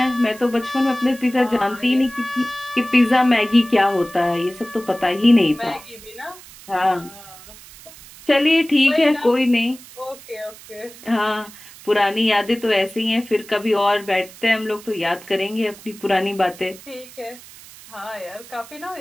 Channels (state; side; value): noise; right; hiss, 19 dB below the sound